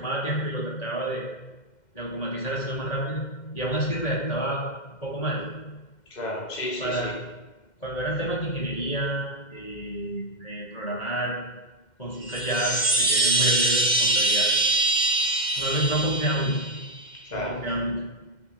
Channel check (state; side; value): late; right; 2.1 ms